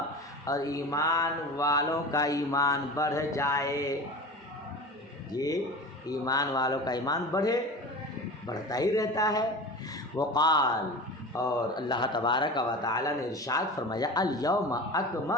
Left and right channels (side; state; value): both; normal; correlation 0.32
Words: اور ایمان والوں کا ایمان بڑھ جائے، یہ ایمان والوں کا ایمان بڑھتا ہی رہتا ہے۔ وقال، اور اللہ تبارک و تعالیٰ نے ارشاد فرمایا الیوم